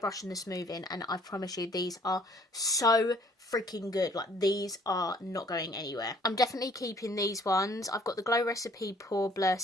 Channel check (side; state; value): both; normal; correlation 0.59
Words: and the smoothing, and I promise you these are so freaking good. Like, these are not going anywhere. I'm definitely keeping these ones. I've got the Glow Recipe Pore Blur